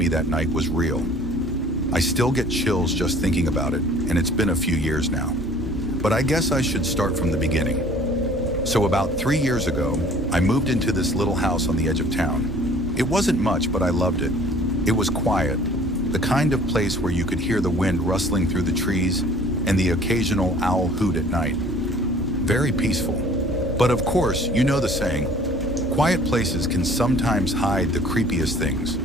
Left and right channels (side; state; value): both; normal; correlation 0.51